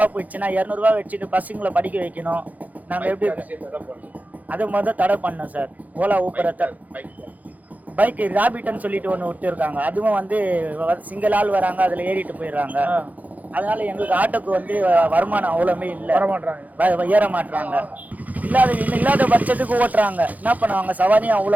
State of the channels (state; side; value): late; left; 0.079 ms